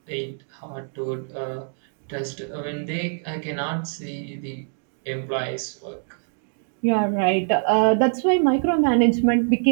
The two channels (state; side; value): silent; left; digital silence